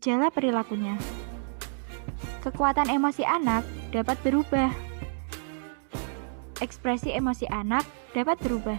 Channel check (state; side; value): silent; left; digital silence